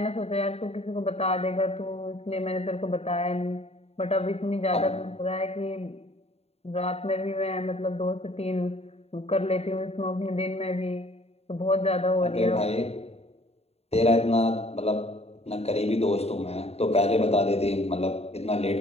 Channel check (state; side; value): late; right; 0.30 ms